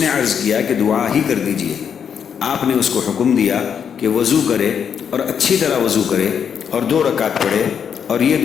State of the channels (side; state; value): right; quieter; 7.6 dB